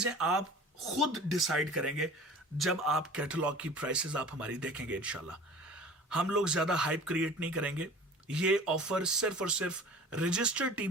आप खुद डिसाइड करेंगे जब आप कैटलॉग की प्राइसेस आप हमारी देखेंगे इंशाल्लाह। हम लोग ज्यादा हाइप क्रिएट नहीं करेंगे। ये ऑफर सिर्फ और सिर्फ रजिस्टर्ड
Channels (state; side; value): normal; both; correlation 0.42